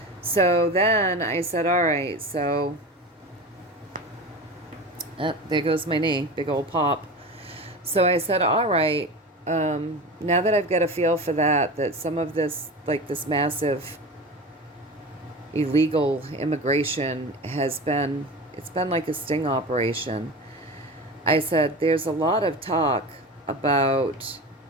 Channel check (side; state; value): both; normal; correlation 0.30